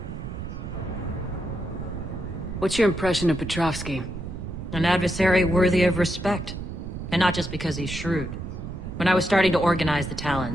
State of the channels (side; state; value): right; noise; rumble, 8 dB below the sound